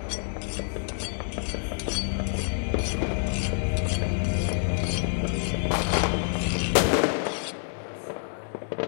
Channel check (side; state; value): right; silent; digital silence